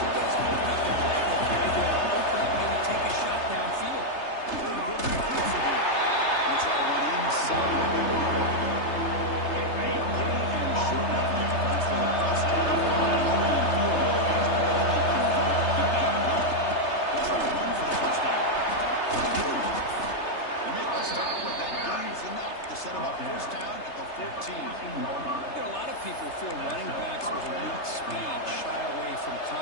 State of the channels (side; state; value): right; late; 3.3 ms